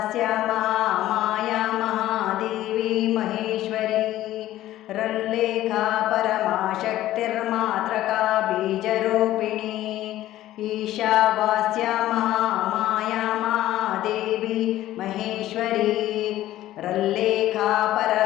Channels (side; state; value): right; quieter; 14.4 dB